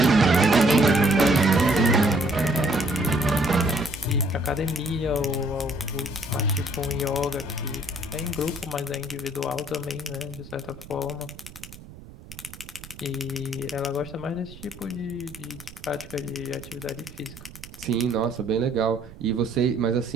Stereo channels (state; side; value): noise; right; rumble, 17 dB below the sound